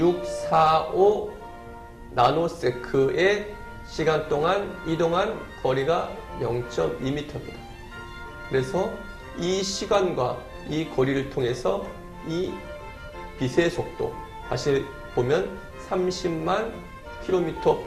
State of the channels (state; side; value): identical; both; correlation 1.00